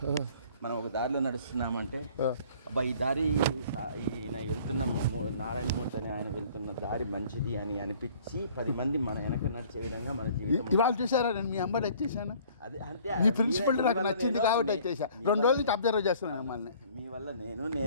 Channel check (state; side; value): inverted; both; correlation -0.54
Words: ఒక దారిలో నడుస్తున్నామంటే అబ్బా ఈ దారి ఈయన వెళ్తున్న నారాయణమూర్తి అని ఆయన వెళ్తున్న దారి మంచిది అని అనిపించి 10 మంది మన వెనక నడిచే విధంగా మన జీవితం. ఇవాళ చూసారా, నేను మీ అమ్మాయి వచ్చేసాను. అది అంటే ఈ ప్రిన్సిపల్ నాకు నచ్చింది కాబట్టి వచ్చేసా. 2 రోజుల నుంచి అబ్జర్వ్ చేస్తున్నాను మిమ్మల్ని. మీ వల్ల